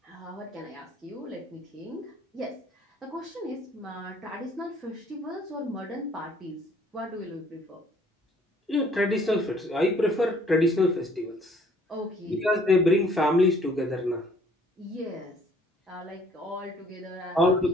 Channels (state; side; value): normal; both; correlation 0.59